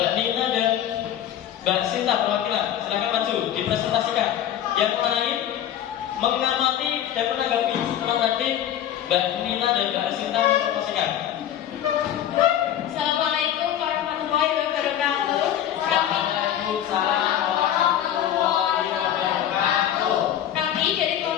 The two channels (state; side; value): quieter; right; 10.9 dB